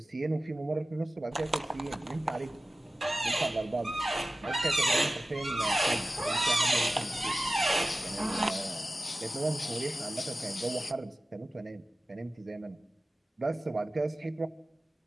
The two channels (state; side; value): normal; both; correlation 0.96